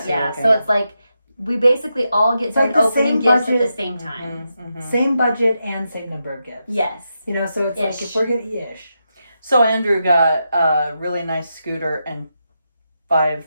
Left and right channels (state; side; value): inverted; both; correlation -0.86